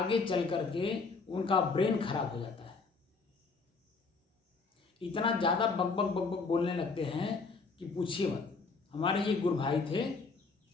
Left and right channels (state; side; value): quieter; right; 4.3 dB